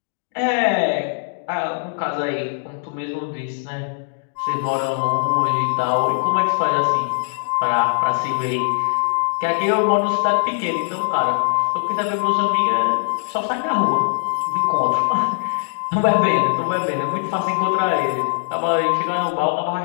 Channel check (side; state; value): right; silent; digital silence